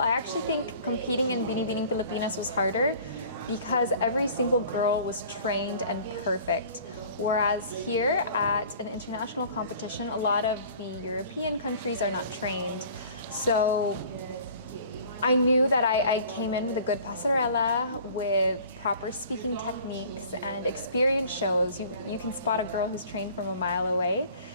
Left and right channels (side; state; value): both; inverted; correlation -0.48